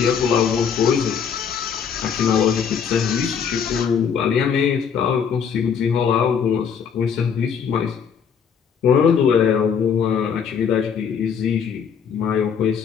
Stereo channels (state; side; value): quieter; right; 7.1 dB